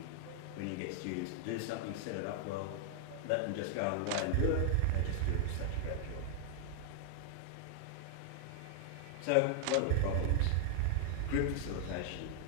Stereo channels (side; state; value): both; different; correlation 0.00